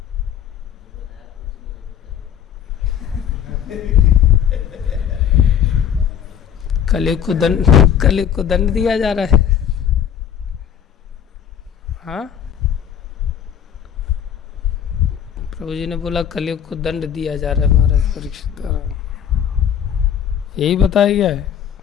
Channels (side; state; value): right; quieter; 9.0 dB